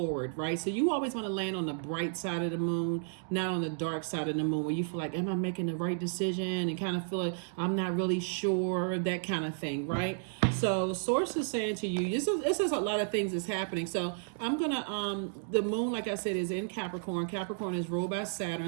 right? So you always want to land on the bright side of the moon, not on the dark side of the moon, where you feel like, am I making the right decision? And kind of feel like I'm not really sure, that kind of thing, right? So source is saying to you, this is a lot of things that's happening. So I'm gonna the moon, like I said, is in Capricorn. Capricorn is ruled by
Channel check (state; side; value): silent; left; digital silence